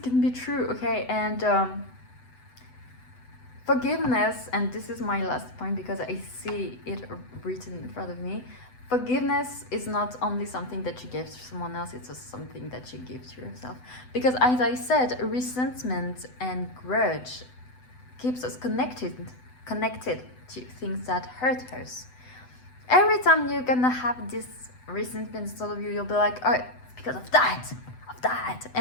can be true, okay? And forgiveness, and this is my last point because I see it written in front of me. Forgiveness is not only something that you give to someone else, it's just something that you give to yourself. Because as I said, resentment and grudge keeps us connected to things that hurt us. Every time you're gonna have this resentment inside of you, you'll be like, oh, it's because of that.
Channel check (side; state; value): right; late; 8.0 ms